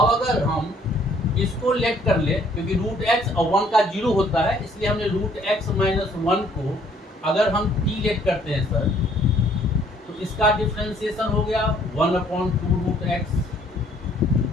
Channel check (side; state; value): both; normal; correlation 0.62